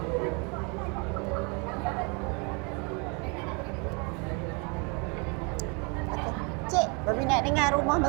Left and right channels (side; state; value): left; quieter; 32.6 dB